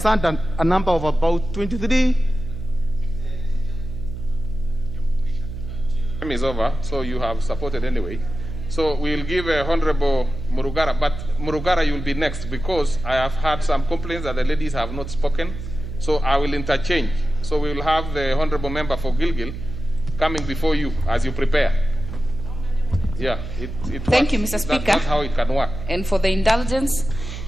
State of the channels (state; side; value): noise; right; hum, 8 dB below the sound